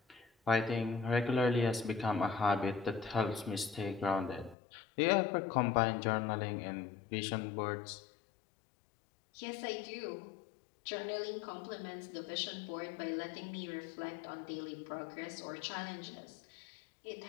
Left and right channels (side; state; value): right; drops out; at 4.5 s